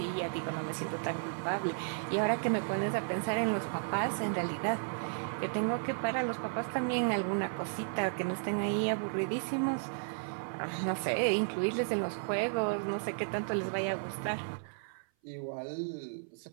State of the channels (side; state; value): left; silent; 55 dB below the other